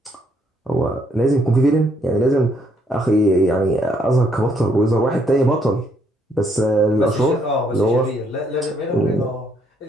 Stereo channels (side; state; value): both; normal; correlation 0.70